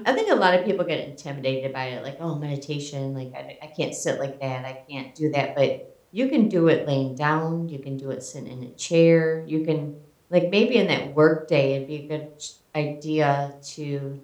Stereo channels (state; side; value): identical; both; correlation 1.00